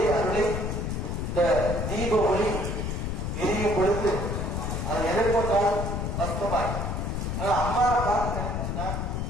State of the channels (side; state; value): left; noise; rumble, 2 dB below the sound